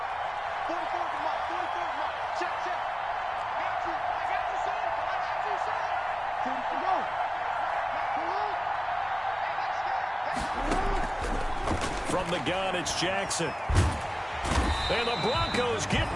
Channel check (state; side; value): identical; both; correlation 1.00